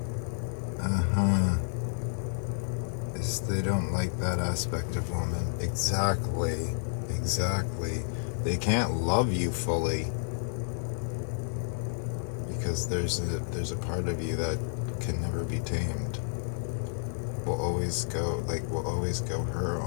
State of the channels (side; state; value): right; silent; 58 dB below the other